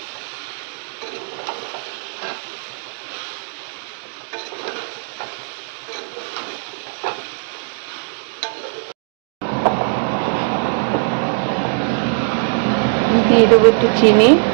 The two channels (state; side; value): silent; left; digital silence